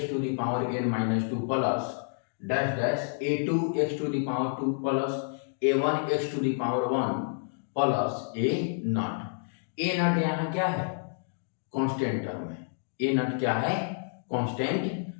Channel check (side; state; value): right; silent; digital silence